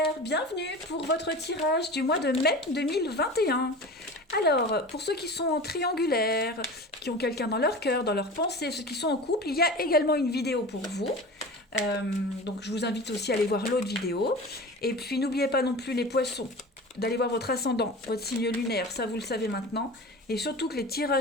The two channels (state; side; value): normal; both; correlation 0.34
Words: bienvenue pour votre tirage du mois de mai 2021. Alors, pour ceux qui sont en triangulaire, qui ont quelqu'un dans leur cœur, dans leur pensée, ceux qui sont en couple, il y a également une vidéo pour vous. Donc je vous invite aussi à aller voir l'autre vidéo. Et puis n'oubliez pas non plus les poissons, d'aller voir votre ascendant, votre signe lunaire, ça vous le savez maintenant. Et surtout que les